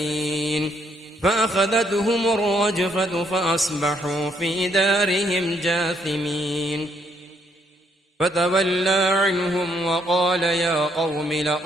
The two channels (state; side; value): normal; both; correlation 0.71